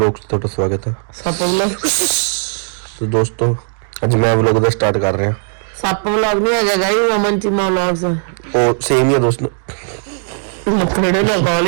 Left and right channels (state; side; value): silent; left; digital silence